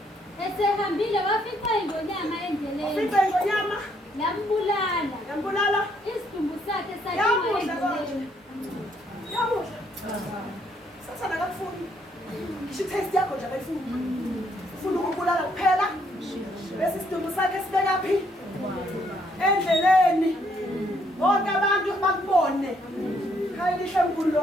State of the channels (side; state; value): both; normal; correlation 0.70